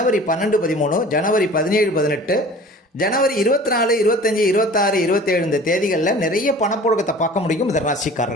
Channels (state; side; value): normal; both; correlation 0.44